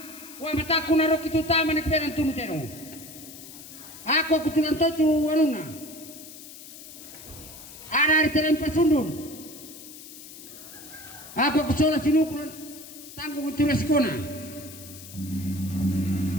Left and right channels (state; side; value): noise; left; hiss, 15 dB below the sound